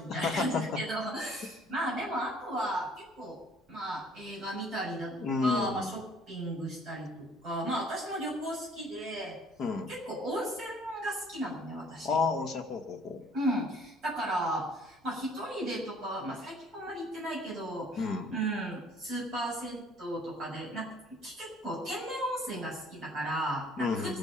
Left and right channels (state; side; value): normal; both; correlation 0.57